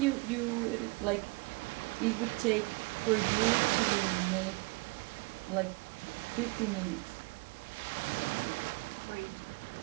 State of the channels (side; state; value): left; quieter; 26.9 dB